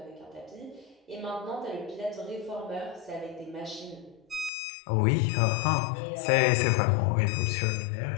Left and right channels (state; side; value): drops out; right; at 4.5 s